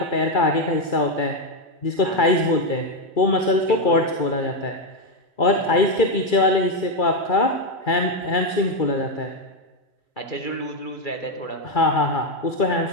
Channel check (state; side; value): late; right; 2.3 ms